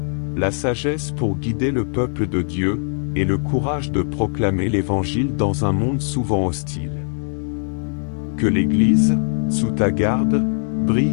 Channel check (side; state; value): right; silent; 57 dB below the other